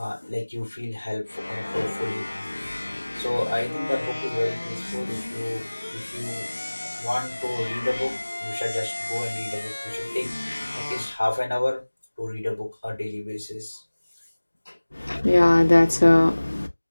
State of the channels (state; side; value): inverted; both; correlation -1.00